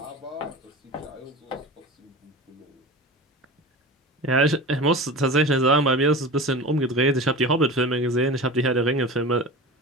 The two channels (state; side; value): normal; both; correlation 0.31